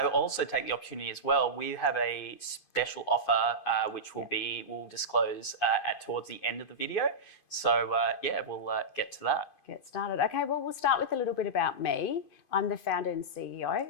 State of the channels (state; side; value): late; right; 2.5 ms